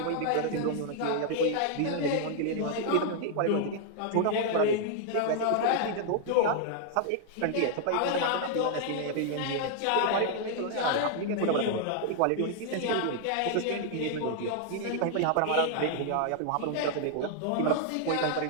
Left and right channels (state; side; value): different; both; correlation 0.00